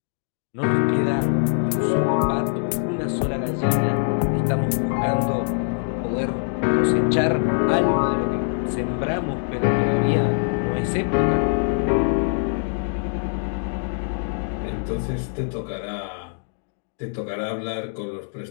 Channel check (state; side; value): silent; right; digital silence